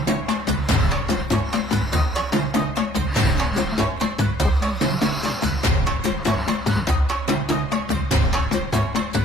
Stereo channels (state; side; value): normal; both; correlation 0.62